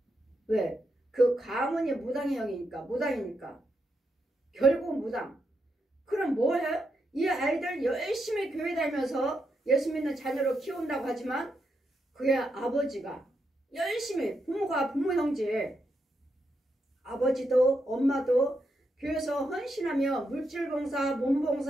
왜? 그 가문이 무당의 영이니까 무당이니까 결국은 무당. 그럼 뭐 해? 이 아이들 열심히 교회 다니면서 예수 믿는 자녀로 키운다고 하지만 그의 아버지가 열심히 부모 형제 아버지도 엄마도 교회에서 헌신하며 물질봉사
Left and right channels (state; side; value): normal; both; correlation 0.83